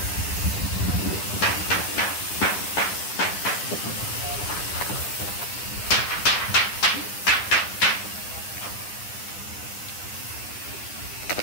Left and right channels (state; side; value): late; right; 9.8 ms